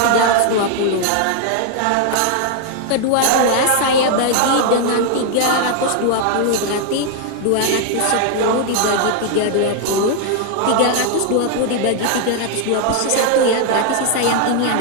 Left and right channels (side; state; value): both; different; correlation 0.00